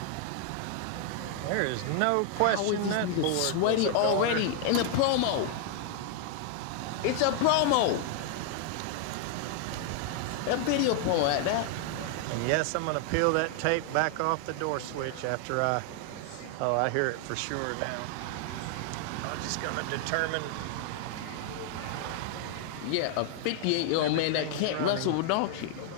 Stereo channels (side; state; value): both; different; correlation 0.00